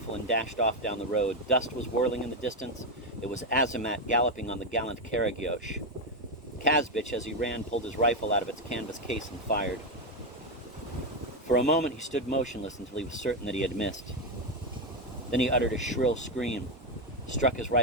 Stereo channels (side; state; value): both; normal; correlation 0.07